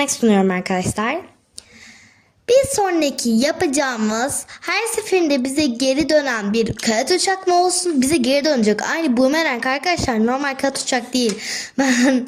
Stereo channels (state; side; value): identical; both; correlation 1.00